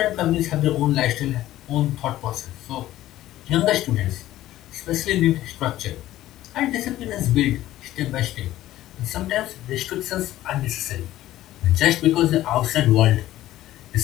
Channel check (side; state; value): right; quieter; 14.5 dB